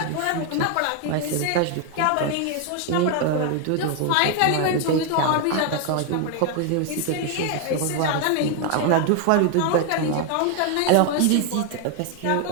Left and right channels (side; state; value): both; different; correlation 0.00